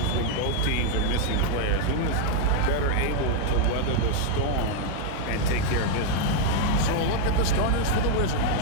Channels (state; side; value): different; both; correlation 0.00